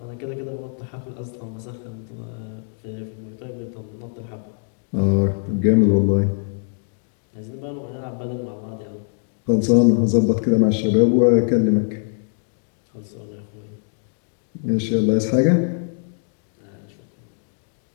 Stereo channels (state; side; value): silent; right; digital silence